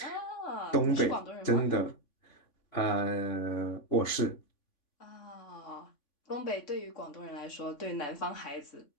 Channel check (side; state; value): right; late; 3.5 ms